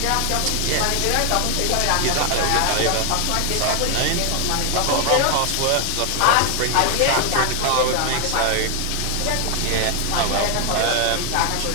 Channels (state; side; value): different; both; correlation 0.01